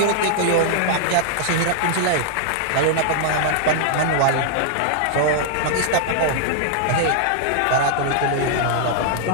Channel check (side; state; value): both; different; correlation -0.01